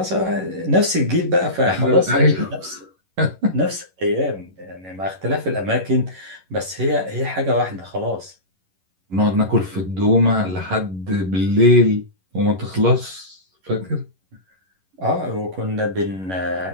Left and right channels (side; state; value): left; late; 11 ms